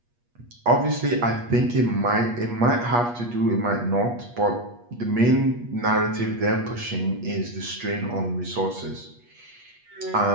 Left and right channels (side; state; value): left; late; 8.4 ms